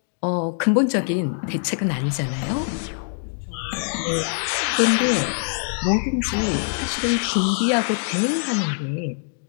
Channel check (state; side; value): silent; right; 63 dB below the other